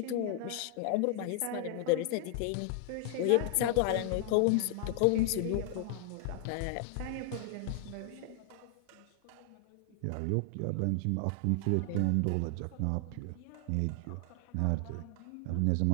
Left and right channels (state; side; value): different; both; correlation 0.00